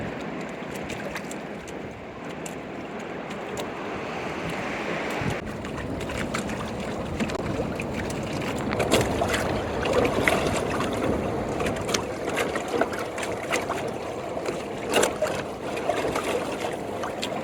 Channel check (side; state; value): both; identical; correlation 1.00